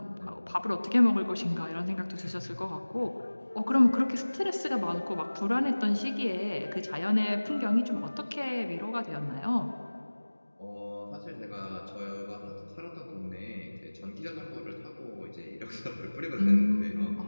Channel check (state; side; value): inverted; both; correlation -1.00